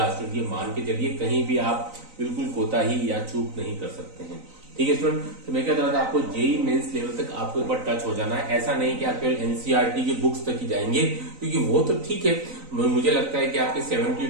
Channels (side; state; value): left; late; 3.9 ms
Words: स्टूडेंट। ये मान के चलिए, कहीं भी आप बिल्कुल कोताही या चूक नहीं कर सकते हैं, ठीक है स्टूडेंट। तो मैं क्या कह रहा था, आपको जेईई मेंस लेवल तक आपको एक बार टच हो जाना है। ऐसा नहीं कि आप केवल एनसीईआरटी की बुक्स तक ही जाएंगे, क्योंकि वो तो ठीक है, मुझे लगता है कि आपके